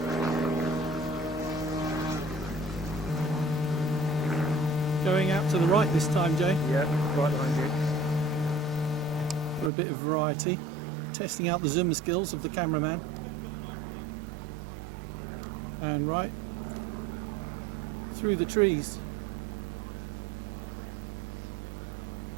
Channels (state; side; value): drops out; left; at 9.7 s